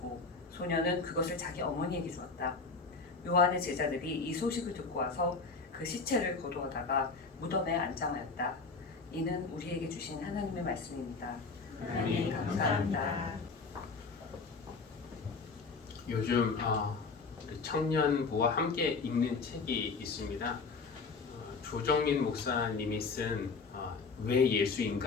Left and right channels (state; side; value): quieter; right; 4.4 dB